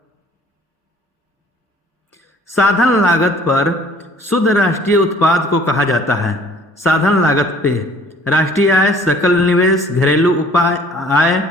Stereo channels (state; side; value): normal; both; correlation 0.54